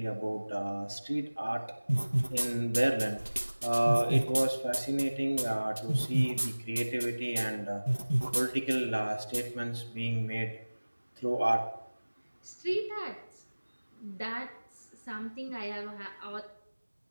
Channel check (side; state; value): both; inverted; correlation -1.00